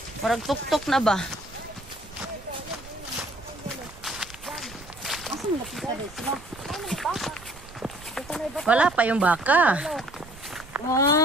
Marag tuk-tuk na ba? Asa mo napita dito sila? Wala pa yung baka.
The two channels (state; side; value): noise; right; rumble, 19 dB below the sound